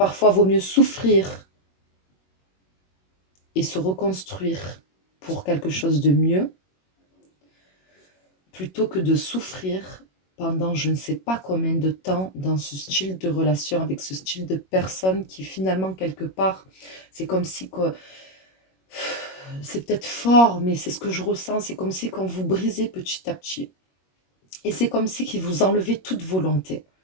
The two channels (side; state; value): right; late; 21 ms